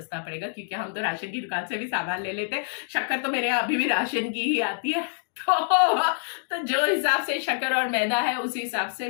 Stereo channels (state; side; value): silent; right; 61 dB below the other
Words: पड़ेगा, क्योंकि हम तो राशन की दुकान से भी सामान ले लेते हैं। शक्कर तो मेरे यहाँ अभी भी राशन की ही आती है। तो जो हिसाब से शक्कर और मैदा है, उसी हिसाब से